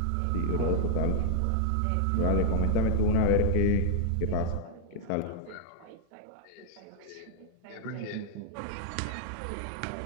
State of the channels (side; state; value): both; different; correlation -0.01